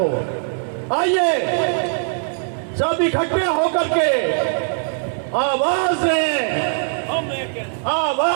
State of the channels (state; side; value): silent; left; 65 dB below the other